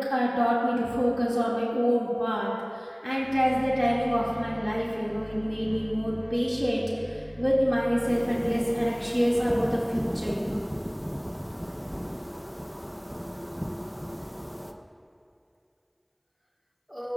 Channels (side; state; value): both; identical; correlation 1.00